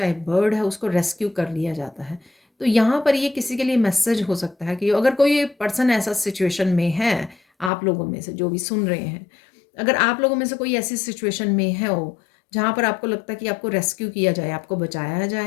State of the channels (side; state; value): right; drops out; at 7.7 s